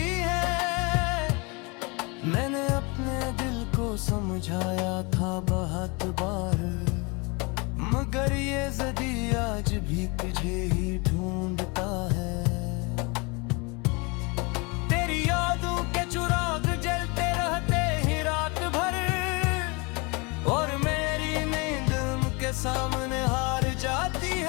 है। मैंने अपने दिल को समझाया था बहुत बार, मगर ये ज़दी आज भी तुझे ही ढूंढता है। तेरी यादों के चिराग जलते रहते ही रात भर, और मेरी नींद उनके सामने हार जाती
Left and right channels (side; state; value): right; quieter; 28.9 dB